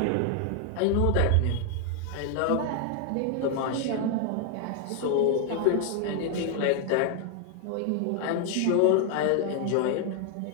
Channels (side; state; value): both; different; correlation 0.00